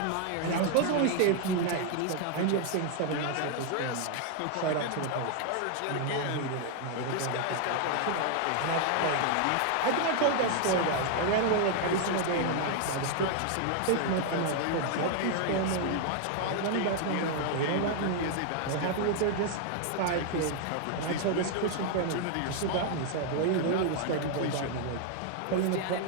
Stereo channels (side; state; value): both; different; correlation 0.00